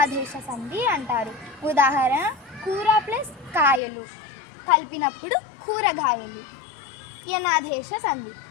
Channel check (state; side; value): drops out; right; at 3.8 s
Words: సంధి అంటారు. ఉదాహరణ: కూర ప్లస్ కాయలు కలిపినప్పుడు కూరగాయలు. యనాదేశ సంధి.